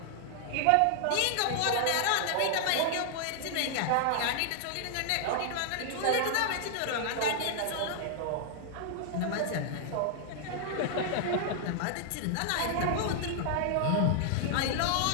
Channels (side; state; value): both; different; correlation -0.01